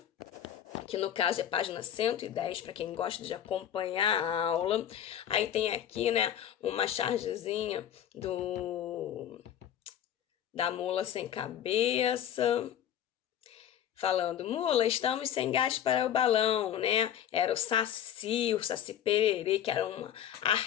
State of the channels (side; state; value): right; quieter; 10.3 dB